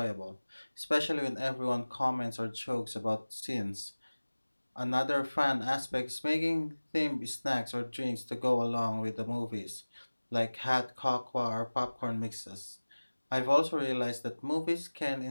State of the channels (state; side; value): inverted; both; correlation -1.00